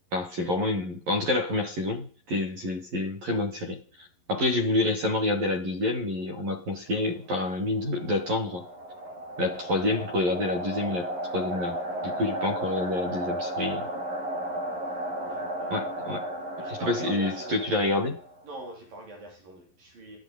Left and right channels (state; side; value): late; left; 11 ms